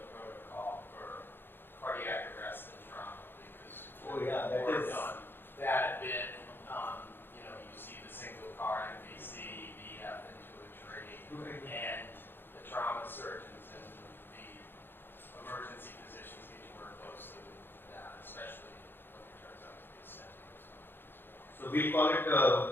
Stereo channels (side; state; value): right; late; 0.10 ms